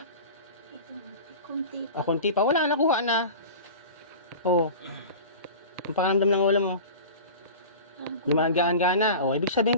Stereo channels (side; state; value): both; inverted; correlation -0.35